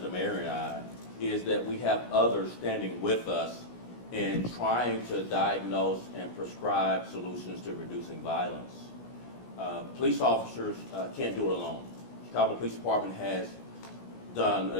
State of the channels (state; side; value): late; right; 16 ms